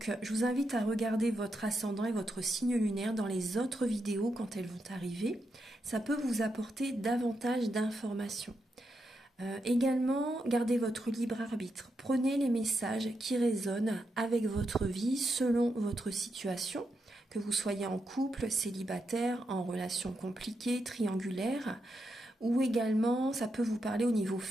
je vous invite à regarder votre ascendant et votre signe lunaire dans les autres vidéos quand elles vont arriver. Ça peut vous apporter davantage d'informations. Également, gardez votre libre arbitre. Prenez les messages qui résonnent avec votre vie selon votre situation, que vous soyez en couple, célibataire, en relation compliquée, triangulaire, ou également ça peut vous parler au niveau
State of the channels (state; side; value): normal; both; correlation 0.84